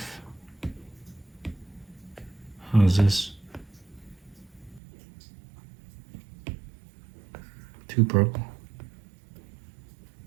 How's this? Too purple.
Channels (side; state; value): left; drops out; at 4.8 s